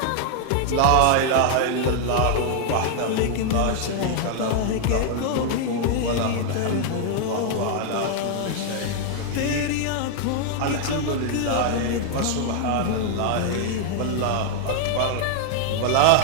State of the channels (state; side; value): different; both; correlation 0.00